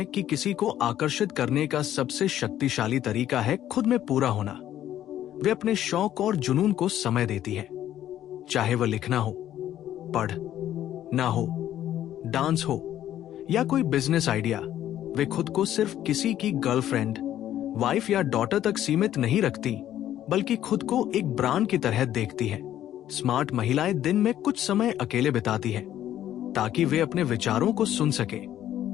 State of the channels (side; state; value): right; quieter; 11.9 dB